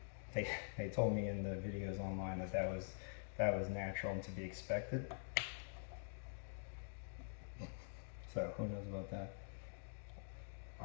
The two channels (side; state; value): right; silent; digital silence